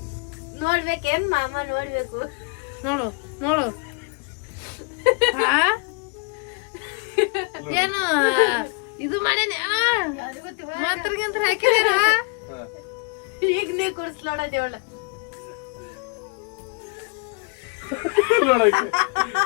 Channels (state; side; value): quieter; right; 32.9 dB